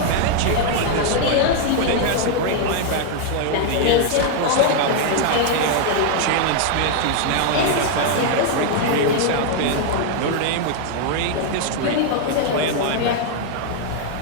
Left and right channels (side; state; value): both; different; correlation 0.00